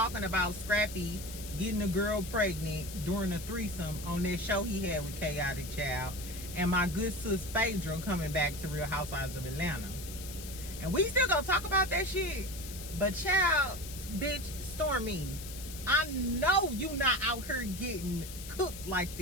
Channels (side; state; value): left; noise; hiss, 12 dB below the sound